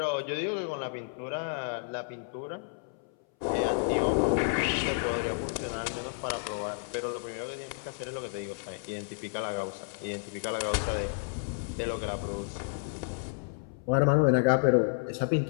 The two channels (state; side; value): silent; right; 57 dB below the other